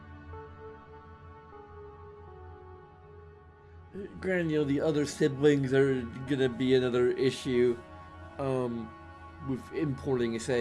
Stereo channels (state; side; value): identical; both; correlation 1.00